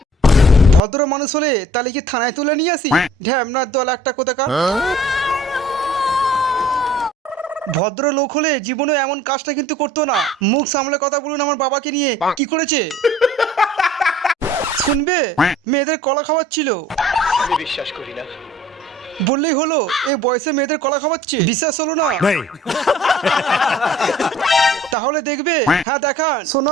ভদ্র মানুষ হলে তাহলে কি থানায় তুলে নিয়ে আসি? ঢ্যামনার দল একটা কোথাকার। ভদ্র লোক হলে জীবনে এমন কাজটা কিন্তু করতো না। মুখ সামলে কথা বলুন আমার বাবাকে নিয়ে কি করেছে শুনবে? মেয়েদের কলা খাওয়াচ্ছিল। আমি বিশ্বাস করি না। বললেই হলো এই বয়সে মেয়েদের কলা খাওয়াচ্ছে, বিশ্বাস হলো না? তাহলে দেখবে। হ্যাঁ দেখান।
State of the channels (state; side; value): normal; both; correlation 0.52